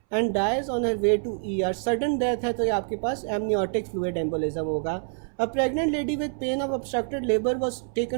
and dies on her way to ER. Sudden death है तो ये आपके पास amniotic fluid embolism होगा। A pregnant lady with pain of obstructed labor was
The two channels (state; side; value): silent; left; 61 dB below the other